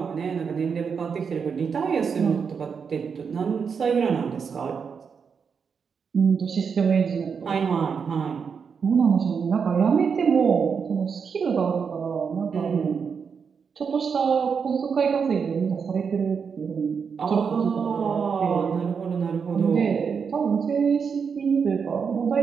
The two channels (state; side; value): quieter; left; 6.2 dB